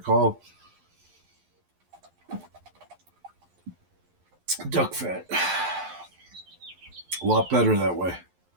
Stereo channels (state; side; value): late; left; 11 ms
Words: Duck fat. A lot better that way.